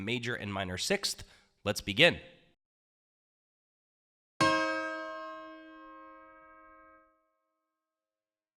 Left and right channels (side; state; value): both; identical; correlation 1.00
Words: and minor sixth. Let's begin.